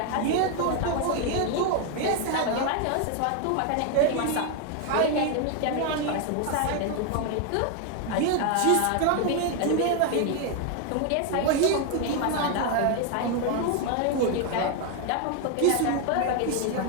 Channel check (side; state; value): both; different; correlation 0.01